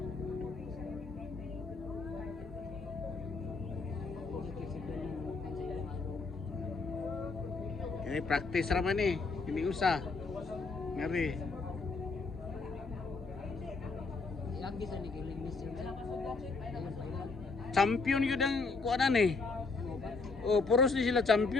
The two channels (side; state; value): right; quieter; 4.0 dB